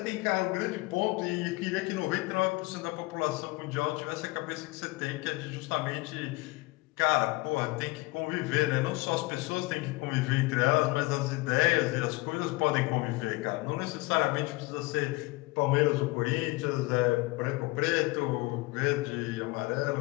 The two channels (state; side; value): quieter; right; 22.9 dB